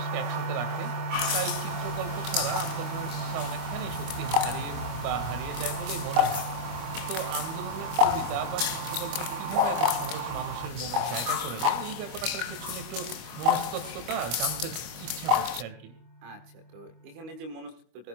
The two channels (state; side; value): late; left; 25 ms